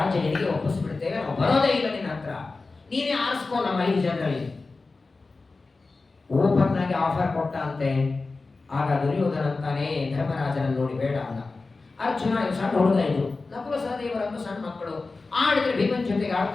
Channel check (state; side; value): quieter; right; 3.8 dB